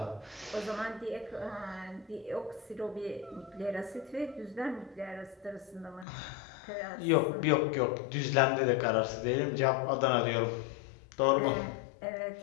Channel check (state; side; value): drops out; right; at 6.1 s